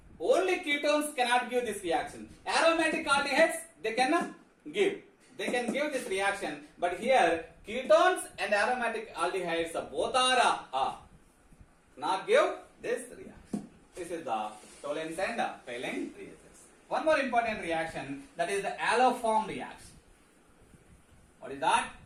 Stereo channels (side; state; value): both; identical; correlation 1.00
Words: only ketones cannot give this reaction. Aromatic aldehydes, they cannot give. They can give this reaction, but here ketones and aromatic aldehydes both are not give this reaction. This is the Tollens and Paling reactions. One more important reaction, that is the haloform reaction. What is that?